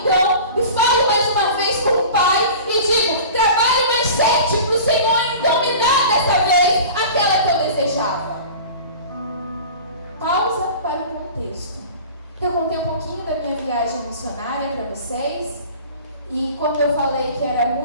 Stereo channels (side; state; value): both; inverted; correlation -0.39